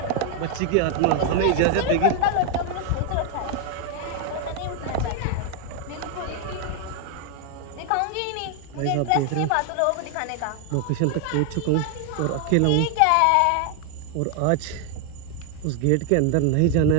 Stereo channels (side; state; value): both; different; correlation 0.00